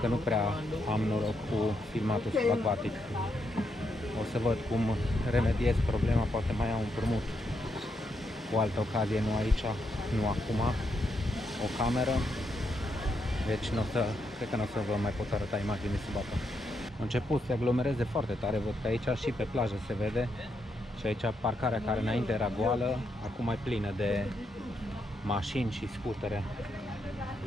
nu prea am noroc cu filmatul subacvatic. O să văd cum remediez problema, poate mai iau un împrumut cu altă ocazie, nu aici, nu acum, o cameră. Deci cred că nu o să vă mai pot arăta imagini sub apă. A început să se aglomereze foarte tare, văd că aici și pe plajă se vede. Și aici parcarea care înainte era goală, acum e plină de mașini și scutere.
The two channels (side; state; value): both; normal; correlation 0.80